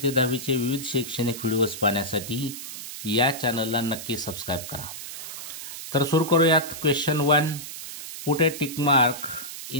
ते 10वीचे विविध शैक्षणिक व्हिडिओज पाहण्यासाठी या चॅनलला नक्की सबस्क्राईब करा. तर सुरू करूयात. Question 1, put a tick mark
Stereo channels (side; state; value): right; noise; hiss, 9 dB below the sound